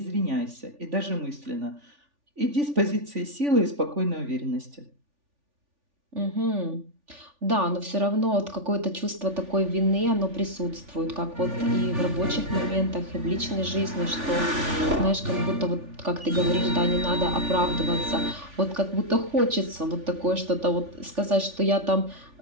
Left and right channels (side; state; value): left; late; 3.4 ms